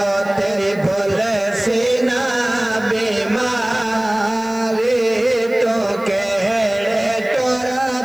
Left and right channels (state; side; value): noise; left; hiss, 25 dB below the sound